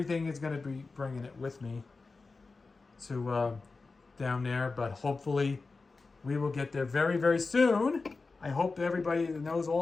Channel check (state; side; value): quieter; right; 4.0 dB